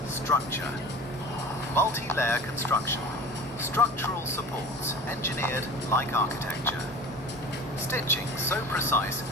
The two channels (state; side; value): normal; both; correlation 0.38